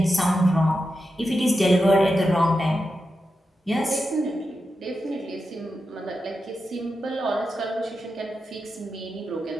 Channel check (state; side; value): normal; both; correlation 0.89